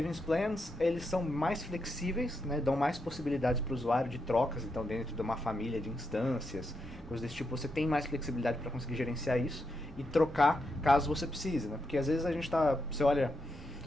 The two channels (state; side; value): normal; both; correlation 0.83